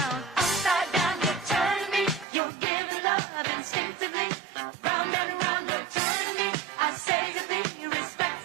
upside down. You turn me, you're giving love instinctively. Round and round, you turn me, I say to thee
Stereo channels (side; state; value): left; drops out; at 2.2 s